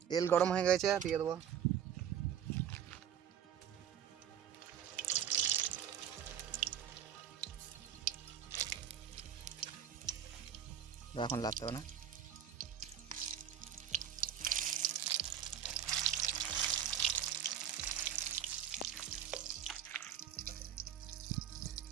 তেল গরম হয়ে গেছে, দিয়ে দেবো। এখন লাগতে হবে না।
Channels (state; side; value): quieter; left; 9.2 dB